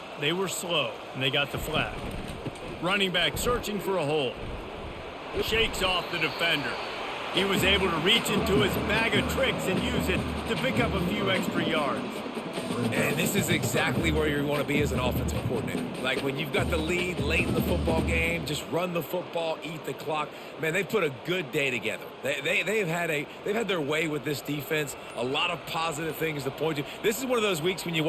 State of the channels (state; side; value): identical; both; correlation 1.00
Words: They were slow, and they got the flag. Running back searching for a hole. Shakes off the defender. He was able to reach into his bag of tricks and use it to pick up a few extra yards. And this is exactly where you want to be as an offensive coordinator. Like when you've got the lead late in the football game, just run the football, eat the clock. Man, they've put a good day together. They've had their way with this defense. A lot of positive things to point to. This is one of those weeks when you